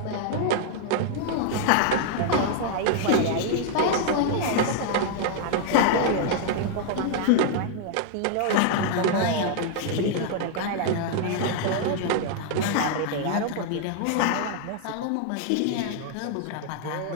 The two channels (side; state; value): both; different; correlation 0.00